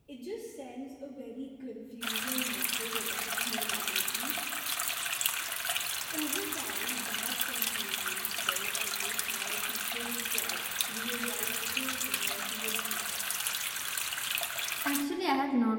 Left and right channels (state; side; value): identical; both; correlation 1.00